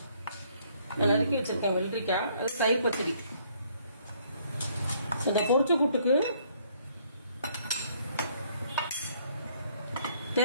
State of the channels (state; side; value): inverted; both; correlation -0.65